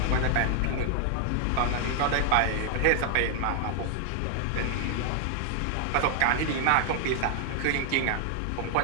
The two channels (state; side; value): different; both; correlation 0.00